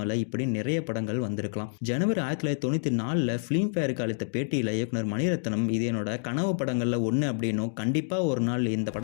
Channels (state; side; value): silent; right; digital silence